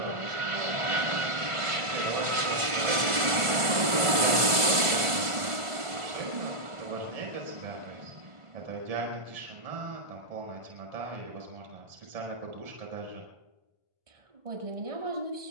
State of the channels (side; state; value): left; late; 1.5 ms